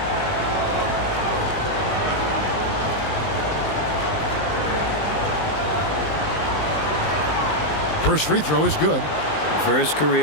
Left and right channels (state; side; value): late; right; 19 ms